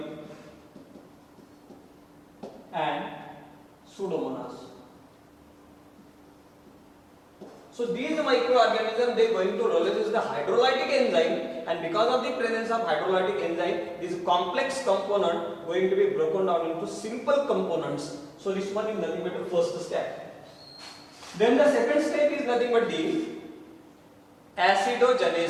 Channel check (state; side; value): identical; both; correlation 1.00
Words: Pseudomonas. So these microorganisms, they are going to release the hydrolytic enzyme, and because of the presence of hydrolytic enzyme, this complex component going to be broken down into simple components. So this one is nothing but the first step. Then the second step is nothing but the